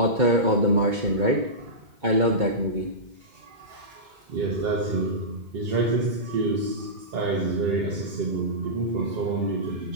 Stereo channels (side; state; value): left; late; 2.2 ms